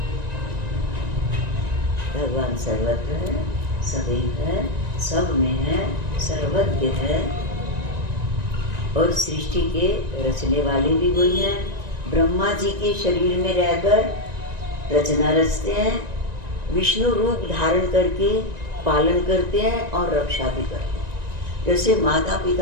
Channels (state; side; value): late; left; 1.9 ms